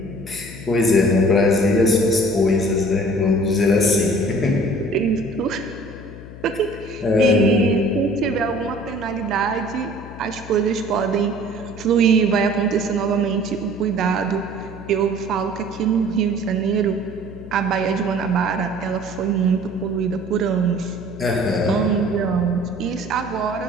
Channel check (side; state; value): left; noise; hum, 15 dB below the sound